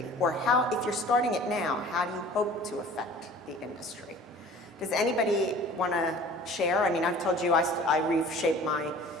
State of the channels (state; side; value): normal; both; correlation 0.46